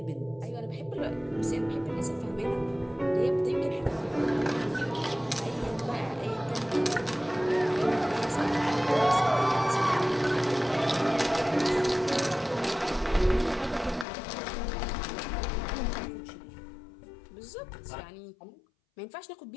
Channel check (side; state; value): right; drops out; at 14.1 s